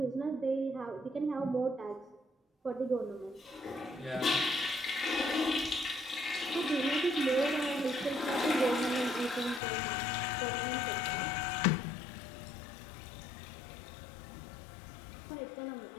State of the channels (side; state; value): right; drops out; at 9.6 s